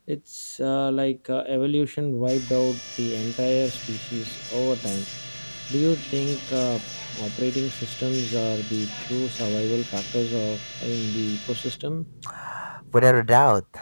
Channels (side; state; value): both; inverted; correlation -1.00